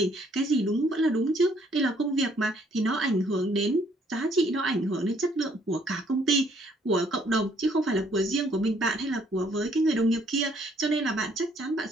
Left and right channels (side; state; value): both; normal; correlation 0.65